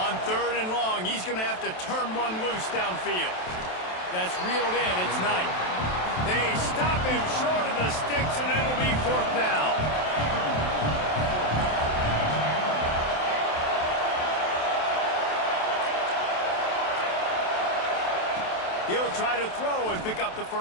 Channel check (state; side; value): late; right; 27 ms